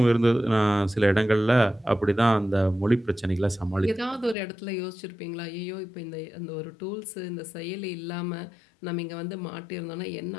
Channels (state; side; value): drops out; right; at 4.4 s